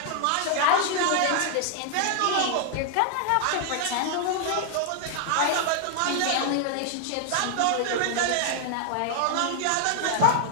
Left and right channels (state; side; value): different; both; correlation 0.00